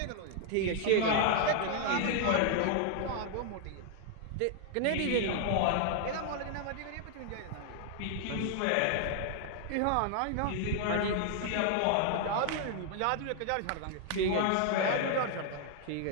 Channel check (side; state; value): both; different; correlation 0.00